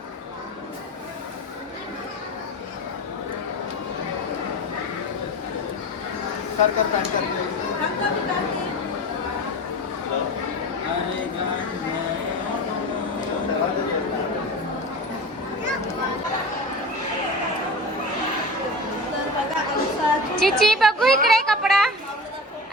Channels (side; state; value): both; normal; correlation 0.31